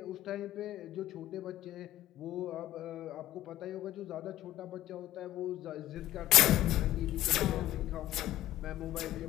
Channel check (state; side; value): quieter; right; 14.1 dB